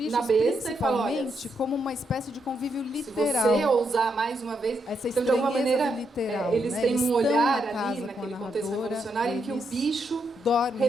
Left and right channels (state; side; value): normal; both; correlation 0.80